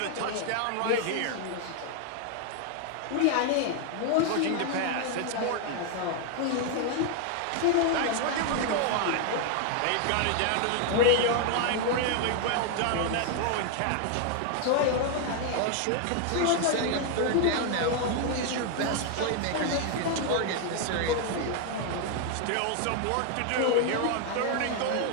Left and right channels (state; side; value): different; both; correlation 0.00